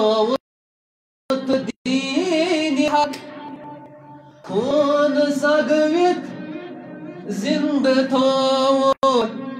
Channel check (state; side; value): identical; both; correlation 1.00